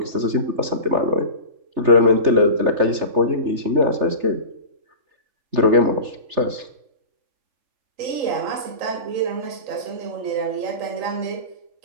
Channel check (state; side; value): late; left; 3.3 ms